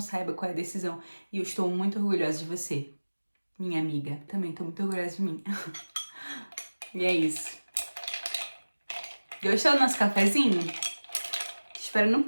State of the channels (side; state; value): both; inverted; correlation -1.00